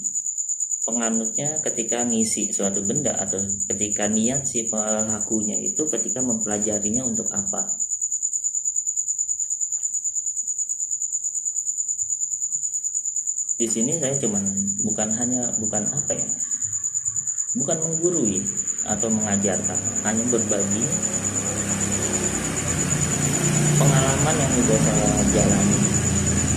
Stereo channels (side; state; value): both; identical; correlation 1.00